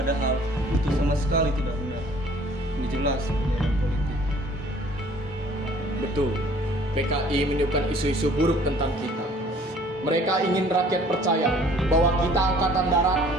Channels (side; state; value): both; normal; correlation 0.55